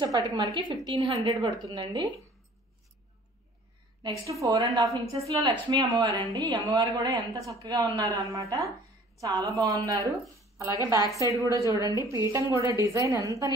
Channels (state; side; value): normal; both; correlation 0.52